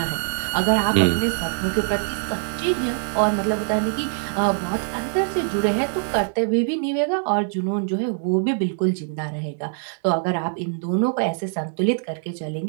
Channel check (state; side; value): silent; left; 60 dB below the other